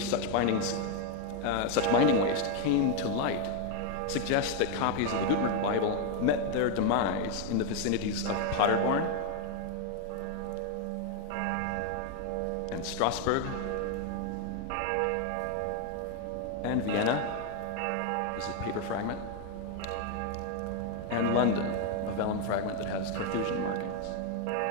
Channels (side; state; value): both; different; correlation 0.01